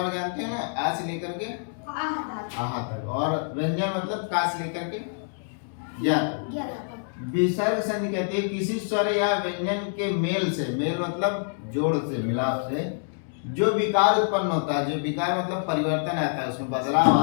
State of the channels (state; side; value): silent; right; digital silence